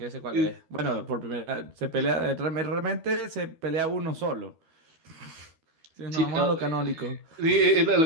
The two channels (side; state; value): left; late; 13 ms